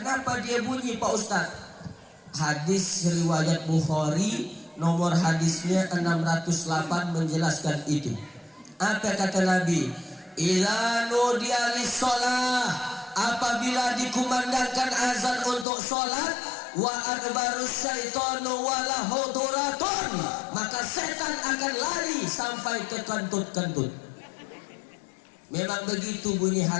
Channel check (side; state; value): right; drops out; at 15.7 s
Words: dia bunyi Pak Ustadz? Hadis riwayat Bukhari nomor hadisnya 608 menjelaskan itu. Apa kata Nabi? Idza nudiya lis-shalah, apabila dikumandangkan azan untuk sholat, wa adbarus syaitanu wala huduratun, maka setan akan lari sampai ke kentut-kentut. Memang begitu bunyi